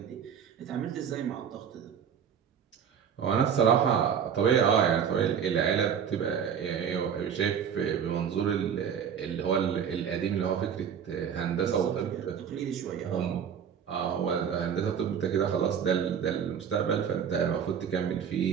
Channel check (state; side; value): quieter; left; 7.9 dB